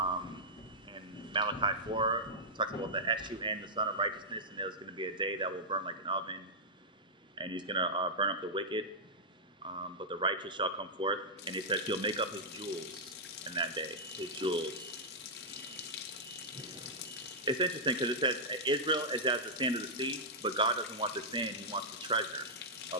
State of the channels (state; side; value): normal; both; correlation -0.09